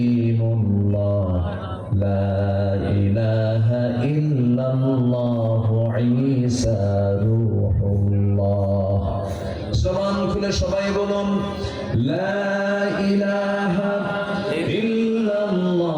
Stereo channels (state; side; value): identical; both; correlation 1.00